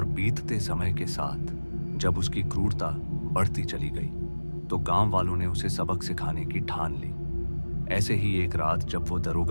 बीतते समय के साथ जब उसकी क्रूरता बढ़ती चली गई तो गांव वालों ने उसे सबक सिखाने की ठान ली। ऐसे ही एक रात जब वो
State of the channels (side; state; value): both; inverted; correlation -1.00